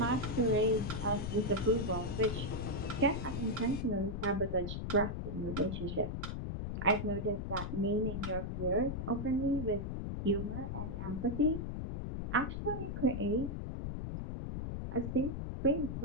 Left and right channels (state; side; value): noise; left; rumble, 4 dB below the sound